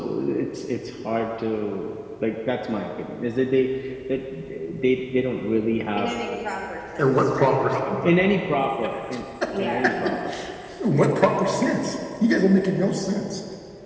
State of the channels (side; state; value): both; identical; correlation 1.00